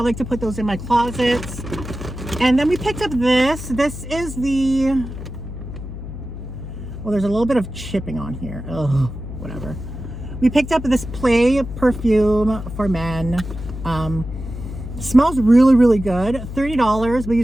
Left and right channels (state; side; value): noise; left; hum, 9 dB below the sound